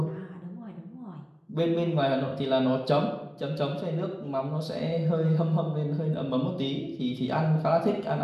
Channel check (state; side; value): identical; both; correlation 1.00